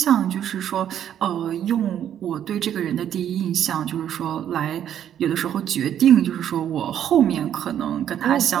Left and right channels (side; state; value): left; quieter; 10.1 dB